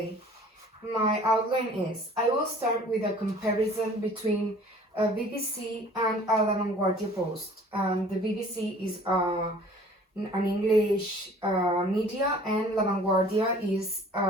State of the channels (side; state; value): both; normal; correlation 0.50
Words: my outline is I will start with a comparison between a BBC and a La Vanguardia Post. The BBC is an English media and La Vanguardia is